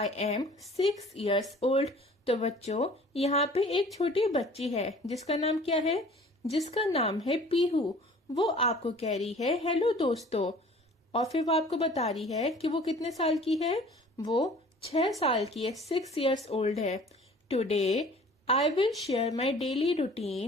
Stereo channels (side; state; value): both; normal; correlation 0.48